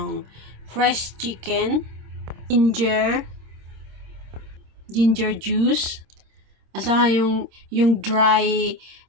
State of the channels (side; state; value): left; late; 26 ms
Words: fresh chicken, ginger juice, at saka yung dry